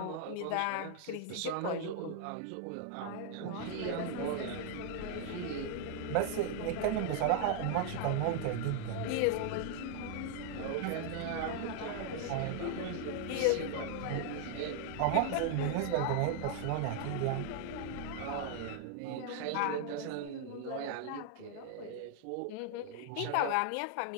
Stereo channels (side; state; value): both; different; correlation 0.00